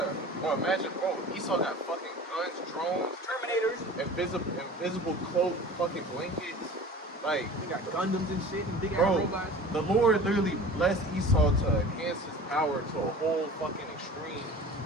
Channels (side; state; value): both; normal; correlation 0.40